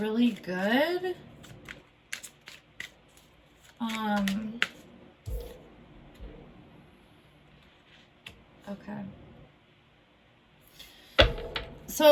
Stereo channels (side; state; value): both; identical; correlation 1.00